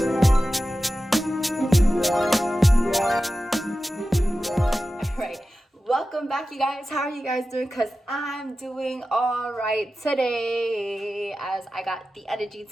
Alright, welcome back you guys. How are you guys doing? Because I'm doing alright today. As I got the energy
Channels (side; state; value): both; normal; correlation 0.94